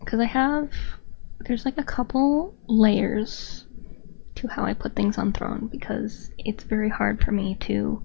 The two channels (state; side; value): silent; right; 56 dB below the other